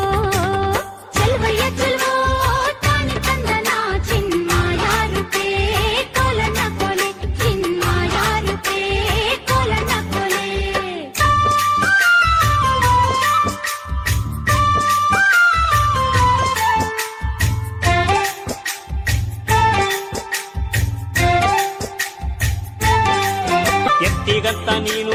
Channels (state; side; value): identical; both; correlation 1.00